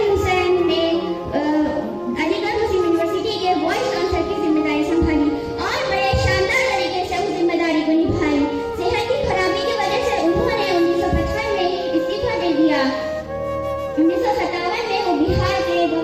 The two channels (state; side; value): identical; both; correlation 1.00